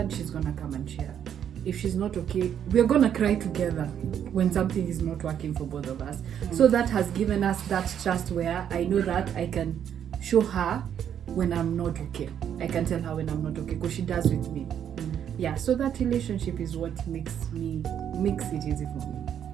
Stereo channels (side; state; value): left; quieter; 9.2 dB